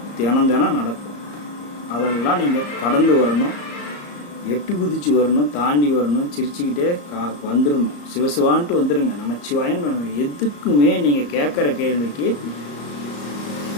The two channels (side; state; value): right; late; 34 ms